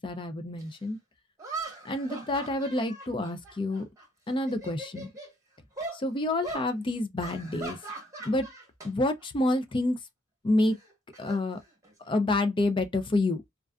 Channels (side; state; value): both; normal; correlation 0.70